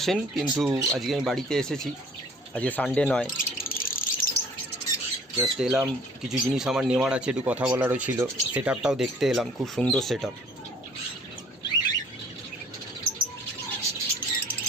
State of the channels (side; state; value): both; normal; correlation 0.53